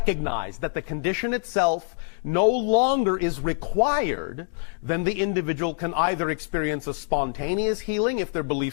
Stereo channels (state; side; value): silent; right; digital silence